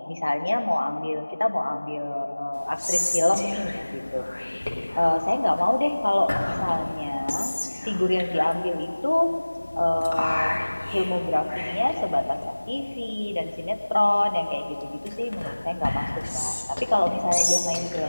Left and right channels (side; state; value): both; inverted; correlation -1.00